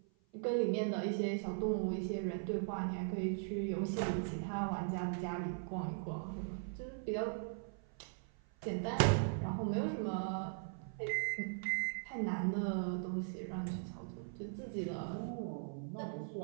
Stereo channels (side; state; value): left; silent; 51 dB below the other